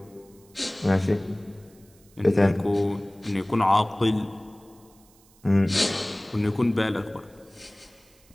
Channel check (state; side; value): noise; right; hiss, 29 dB below the sound